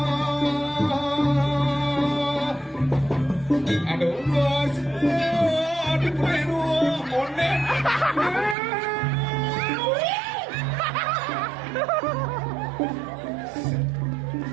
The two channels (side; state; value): left; drops out; at 8.6 s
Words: Aduh, aduh, konen.